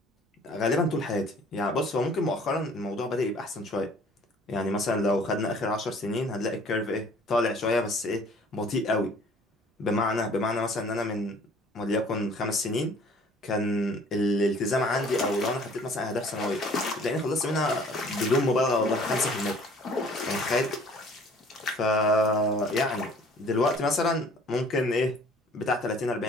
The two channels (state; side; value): normal; both; correlation 0.53